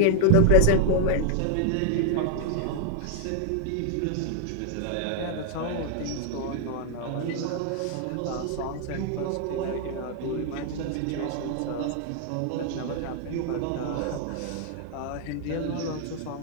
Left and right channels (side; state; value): both; different; correlation 0.00